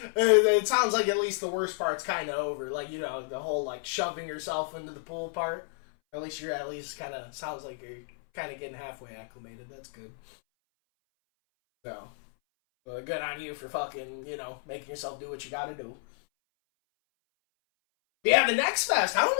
it sounds like at least the worst part's kind of over. Like, you know, the whole, like, shoving yourself into the pool part. At least you're kind of, sounds like you're kind of getting halfway acclimated. That's good. So, good on you for fucking, you know, making yourself do what you gotta do. Yeah, the Next Fest. I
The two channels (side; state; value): right; silent; 57 dB below the other